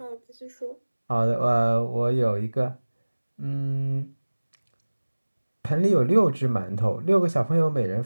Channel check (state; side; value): inverted; both; correlation -1.00